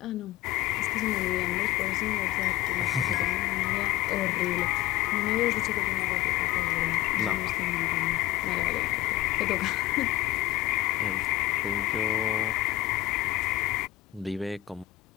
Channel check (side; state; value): right; quieter; 15.7 dB